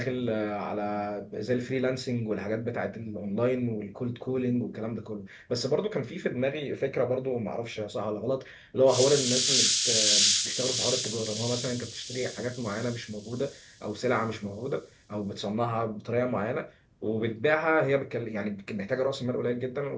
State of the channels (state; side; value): identical; both; correlation 1.00